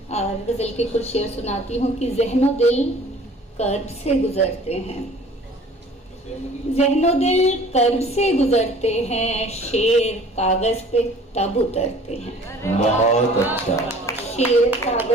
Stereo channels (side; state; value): both; normal; correlation 0.50